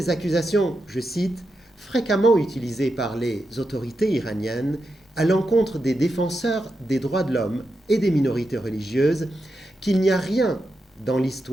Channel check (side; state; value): both; normal; correlation 0.87